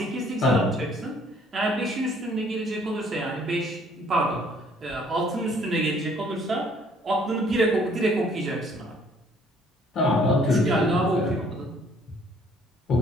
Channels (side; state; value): both; normal; correlation 0.61